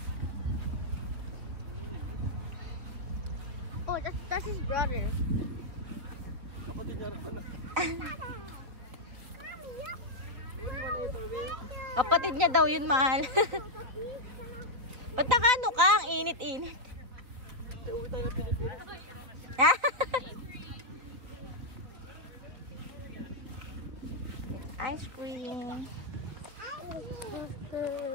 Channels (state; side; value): late; left; 3.5 ms